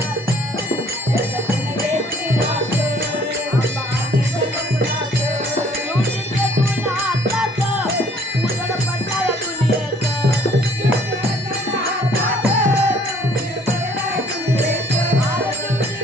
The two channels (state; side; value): normal; both; correlation 0.59